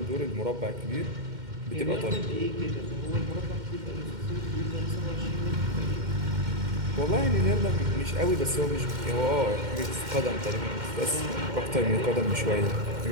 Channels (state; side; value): late; left; 2.1 ms